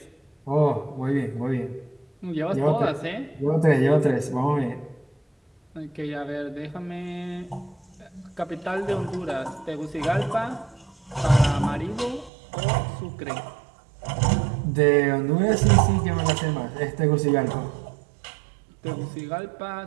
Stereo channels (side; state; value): left; drops out; at 12.3 s